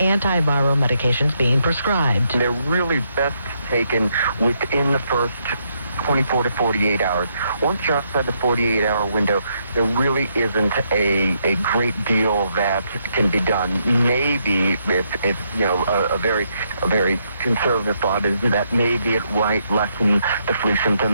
medications being prescribed. They're really best taken within the first 24 to 48 hours. Once you're outside the 48-hour window, there really isn't a great deal that can be done. Maybe if you know a very conservative thought is that maybe it might lessen the flu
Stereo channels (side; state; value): both; inverted; correlation -0.76